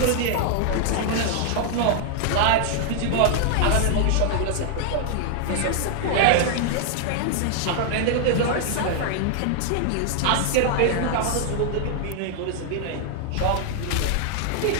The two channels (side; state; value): both; different; correlation 0.00